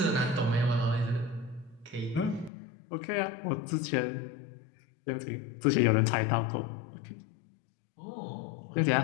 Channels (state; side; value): drops out; right; at 2.5 s